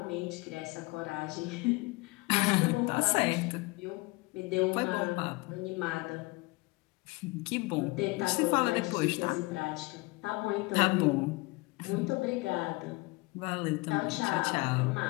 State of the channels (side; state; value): right; quieter; 24.6 dB